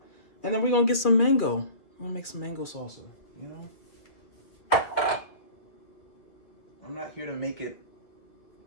And then we're gonna get some mango. We're gonna make some mango salsa, you know? I'm not here to make it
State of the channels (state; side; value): late; right; 2.4 ms